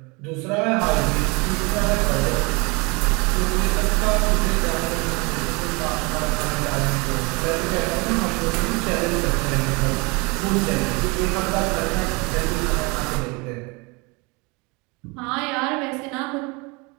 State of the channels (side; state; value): left; quieter; 28.0 dB